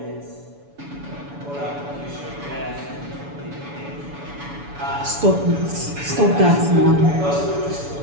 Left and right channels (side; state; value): left; late; 7.0 ms